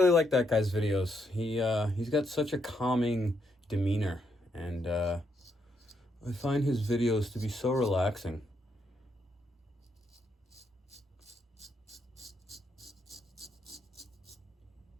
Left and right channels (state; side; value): normal; both; correlation 0.77